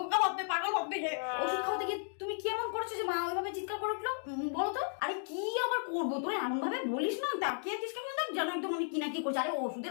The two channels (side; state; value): right; silent; digital silence